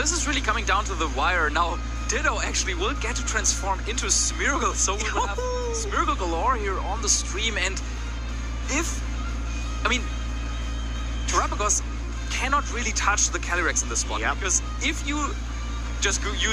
is really coming down to the wire. Now, Ditto actually will get to transform into Smeargle, so we will have Smeargle galore here on the stream. And Terrapagos cannot really touch the Calyrex in this spot, because if you just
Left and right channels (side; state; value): both; identical; correlation 1.00